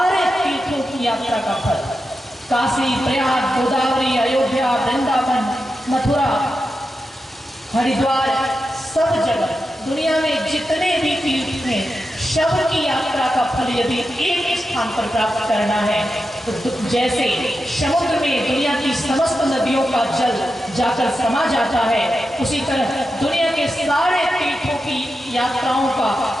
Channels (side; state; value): both; normal; correlation 0.89